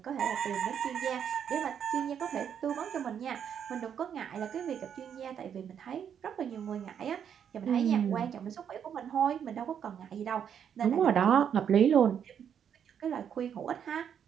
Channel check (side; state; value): left; quieter; 8.3 dB